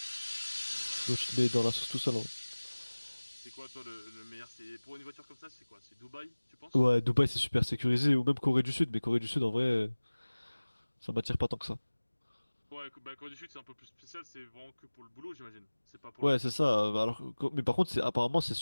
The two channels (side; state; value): both; inverted; correlation -1.00